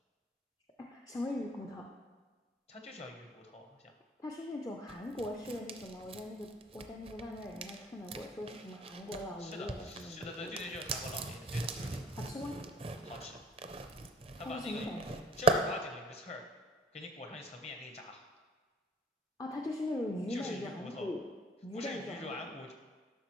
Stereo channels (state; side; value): normal; both; correlation 0.50